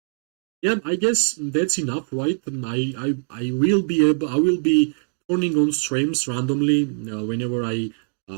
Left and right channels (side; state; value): left; silent; digital silence